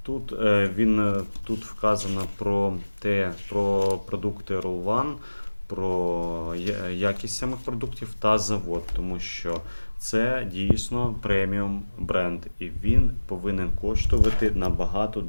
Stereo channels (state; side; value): inverted; both; correlation -1.00